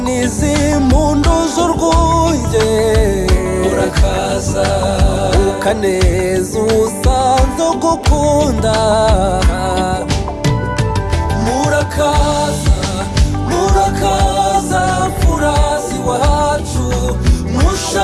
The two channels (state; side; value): identical; both; correlation 1.00